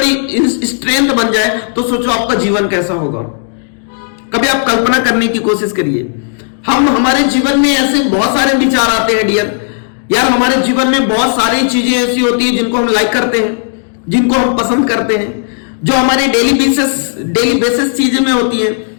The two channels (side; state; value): right; silent; digital silence